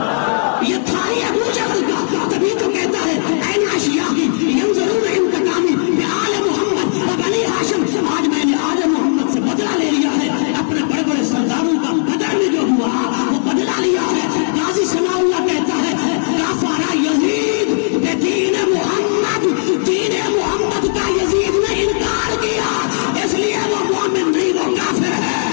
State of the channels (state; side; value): silent; right; digital silence